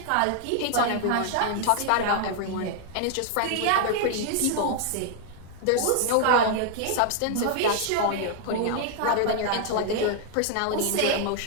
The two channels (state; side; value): different; both; correlation 0.00